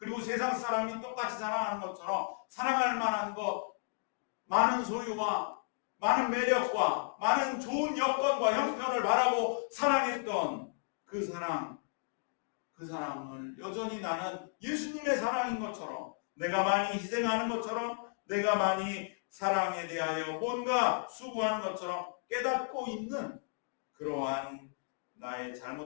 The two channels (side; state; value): right; silent; digital silence